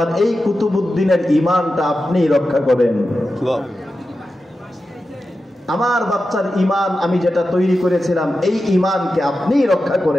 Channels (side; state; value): both; normal; correlation 0.92